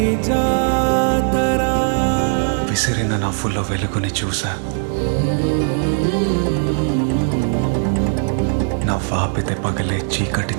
విసిరిన నవ్వుల్లో వెలుగుని చూసా, నవ్వాపితే పగలే చీకటి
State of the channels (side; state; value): left; silent; digital silence